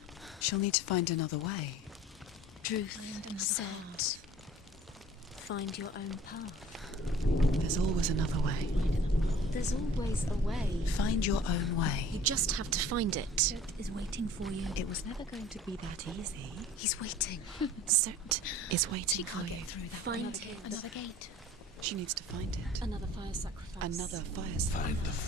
She'll need to find another way. Truth said, find your own path. There's always another way. There's always a way. Find your own way. You just have to find it. Surt is waiting for you. It was never going to be that easy. He's waiting. Surt is waiting She for can't you. get through that. Find it. Another gate. She needs to find it. Another fire sacrifice. Another fire. Find the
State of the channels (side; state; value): both; normal; correlation 0.48